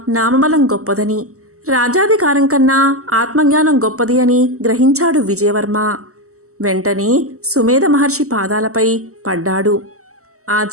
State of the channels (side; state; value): left; late; 0.64 ms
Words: నామబలం గొప్పదని, రాజాధికారం కన్నా ఆత్మజ్ఞానం గొప్పది అని గ్రహించాడు విజయవర్మ. వెంటనే సుమేధ మహర్షి పాదాలపై పడ్డాడు. ఆ